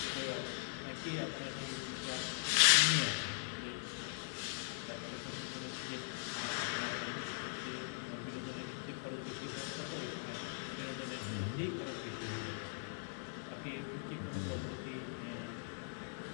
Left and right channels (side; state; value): right; silent; digital silence